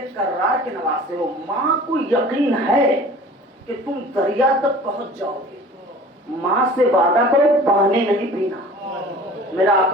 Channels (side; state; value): both; normal; correlation 0.44